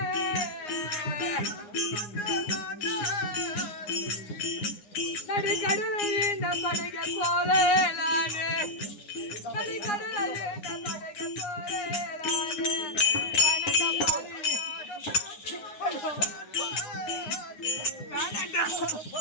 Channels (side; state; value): right; late; 9.7 ms